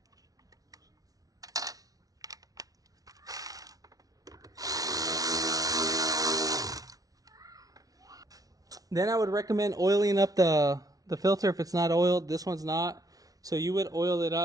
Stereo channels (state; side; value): late; left; 0.18 ms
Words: Then I would recommend oiling up the filter if it's not oiled. This one's not, so you would oil it